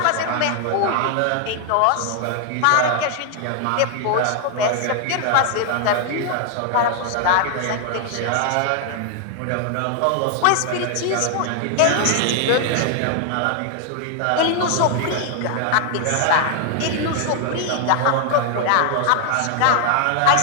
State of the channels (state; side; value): different; both; correlation 0.00